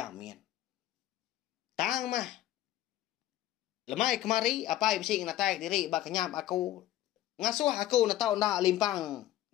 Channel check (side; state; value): right; quieter; 13.8 dB